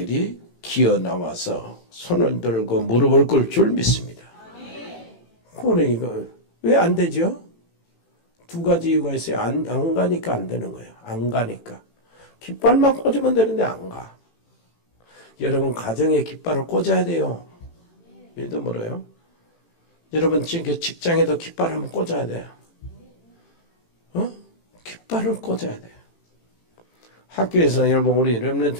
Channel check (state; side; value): late; right; 18 ms